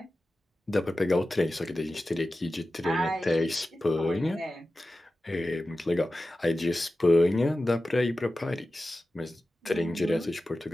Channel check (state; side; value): normal; both; correlation 0.94